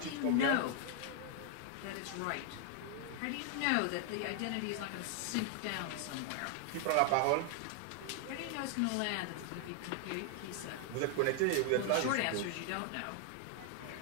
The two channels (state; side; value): different; both; correlation 0.00